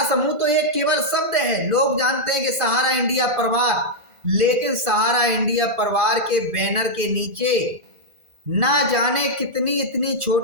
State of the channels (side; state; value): left; late; 1.5 ms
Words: समूह तो एक केवल शब्द है, लोग जानते हैं कि सहारा इंडिया परिवार, लेकिन सहारा इंडिया परिवार के बैनर के नीचे ना जाने कितनी